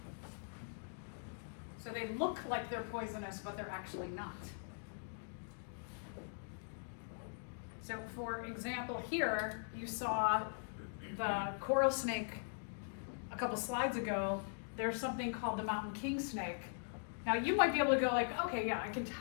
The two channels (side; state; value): right; silent; digital silence